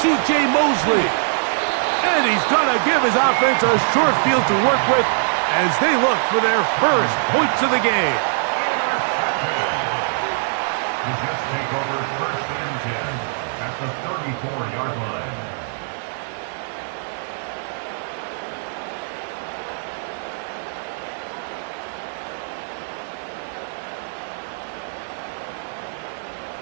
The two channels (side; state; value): left; silent; 64 dB below the other